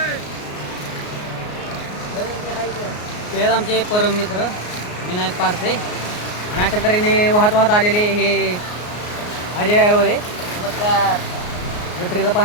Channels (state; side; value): late; right; 33 ms